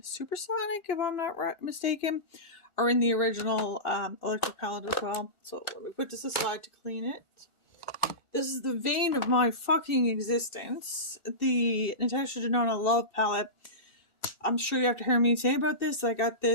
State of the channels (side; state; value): left; late; 1.4 ms